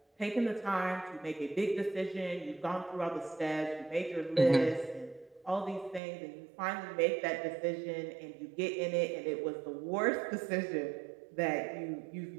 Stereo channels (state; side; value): drops out; left; at 6.0 s